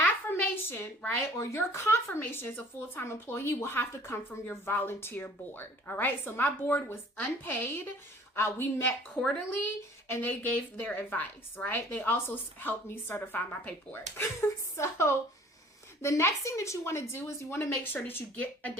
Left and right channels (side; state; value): both; normal; correlation 0.51